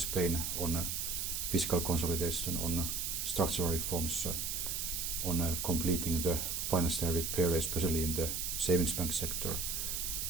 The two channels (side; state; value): right; noise; hiss, 1 dB below the sound